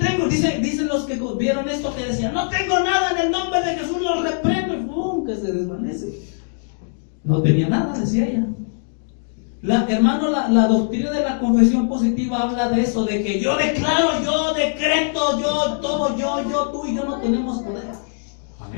dicen los que vieron esto que decían, no tengo nada en el nombre de Jesús, los reprendo, y ¡pum!, que se desvanece. No tenía nada, decía ella. Hermano, la doctrina de la confesión positiva habla de eso, de que yo declaro, yo decreto, yo todo, tú y yo no tenemos poder.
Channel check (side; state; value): right; silent; digital silence